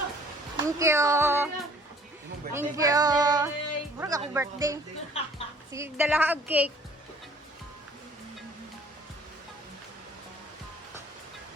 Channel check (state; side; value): normal; both; correlation 0.55